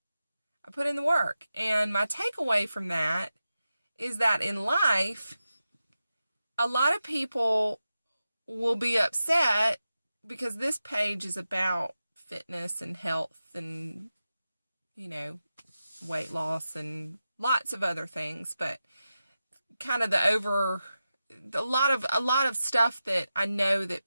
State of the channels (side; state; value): both; inverted; correlation -0.92